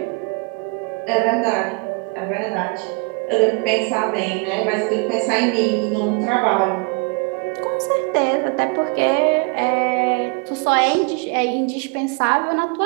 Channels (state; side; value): quieter; left; 32.5 dB